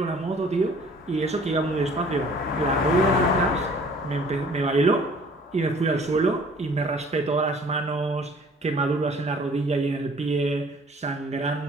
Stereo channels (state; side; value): normal; both; correlation 0.53